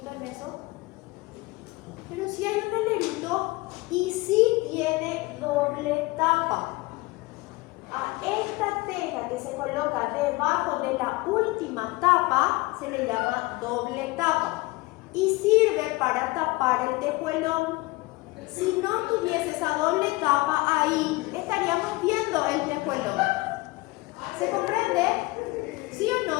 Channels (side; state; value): right; quieter; 22.2 dB